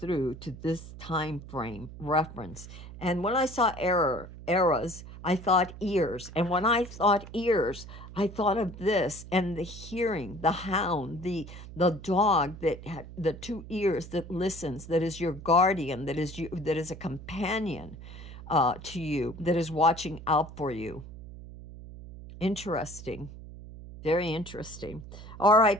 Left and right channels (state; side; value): noise; right; hum, 14 dB below the sound